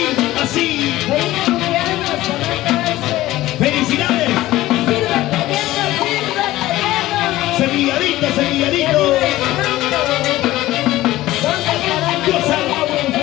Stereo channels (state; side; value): quieter; right; 16.4 dB